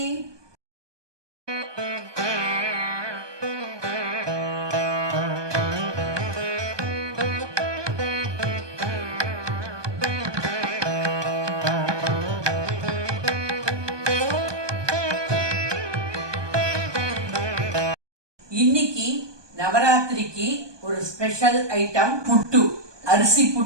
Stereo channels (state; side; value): late; left; 1.2 ms